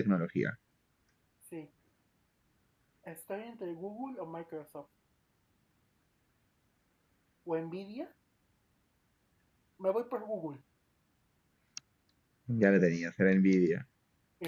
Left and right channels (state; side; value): identical; both; correlation 1.00